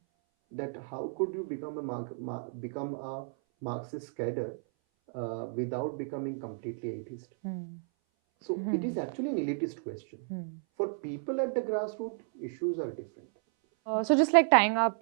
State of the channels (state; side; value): silent; left; 56 dB below the other